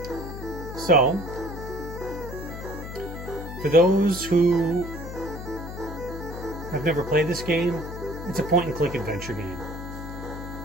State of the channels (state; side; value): noise; left; hum, 9 dB below the sound